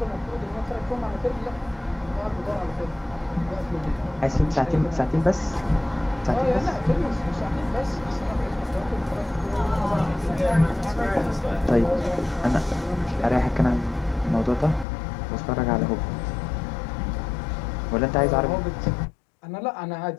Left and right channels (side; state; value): right; drops out; at 14.9 s